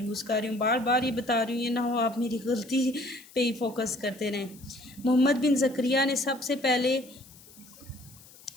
कर रही हूँ, बार बार ये बता रही हूँ, ये ना हो आप मेरी गलती पे ही फोकस करते रहें। मोहम्मद बिन ज़करिया ने सबसे पहले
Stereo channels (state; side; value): noise; left; hiss, 22 dB below the sound